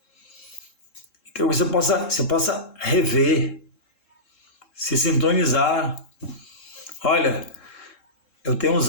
Então você possa rever, se sintonizar. Olha, eu tenho um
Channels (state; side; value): late; right; 3.7 ms